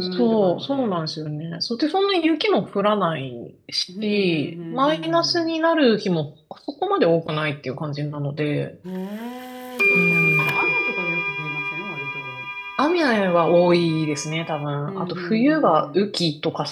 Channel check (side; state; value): both; identical; correlation 1.00